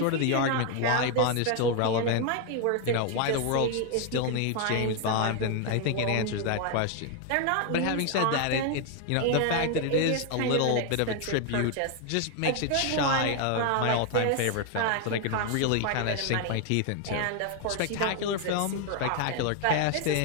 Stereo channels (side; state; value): both; different; correlation 0.00